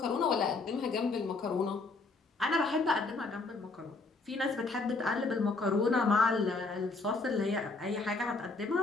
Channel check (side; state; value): right; quieter; 3.7 dB